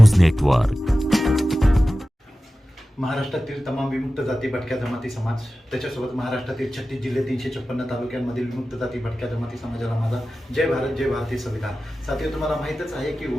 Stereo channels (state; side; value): normal; both; correlation 0.95